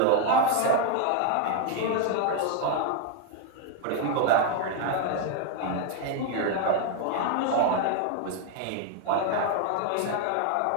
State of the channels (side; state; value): both; different; correlation 0.00